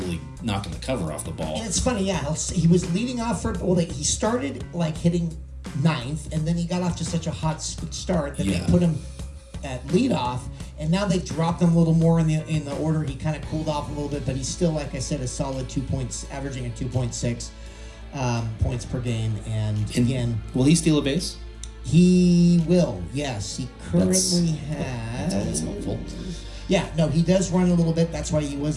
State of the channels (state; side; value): identical; both; correlation 1.00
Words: knocking the cover off the ball. And it's funny, yeah. He was leading off he started like hitting ninth, and then he got off to such a hot start that they put him at leadoff, and now they dropped him a little more in the order. He kind of cooled off a little bit, but he's still, like I said, a solid 2 points, averaging at 2.6 points per game. And again, will he steal a base? he will. Yes, he currently has. That's always helpful. Yeah, no, he does run a little bit. That's why he